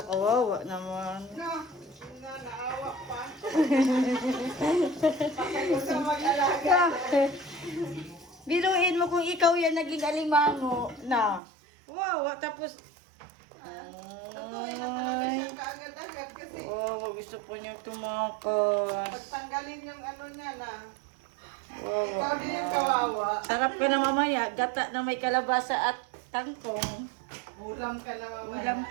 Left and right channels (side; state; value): left; drops out; at 11.4 s